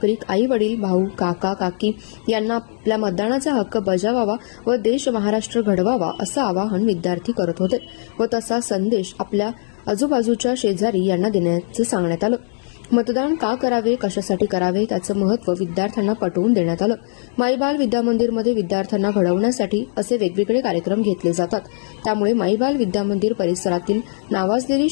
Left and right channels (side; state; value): right; silent; digital silence